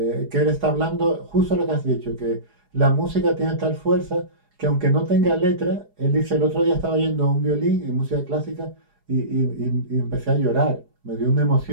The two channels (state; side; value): late; left; 4.8 ms